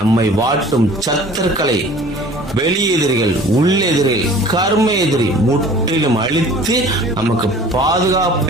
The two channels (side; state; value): both; normal; correlation 0.47